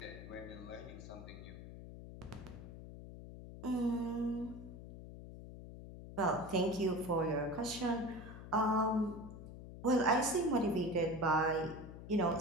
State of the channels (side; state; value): left; noise; hum, 13 dB below the sound